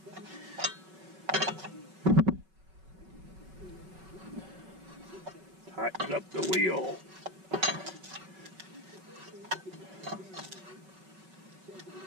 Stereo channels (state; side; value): late; left; 5.3 ms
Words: Tighten up the wheel.